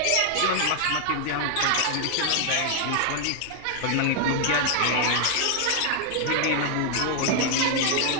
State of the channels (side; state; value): both; different; correlation 0.00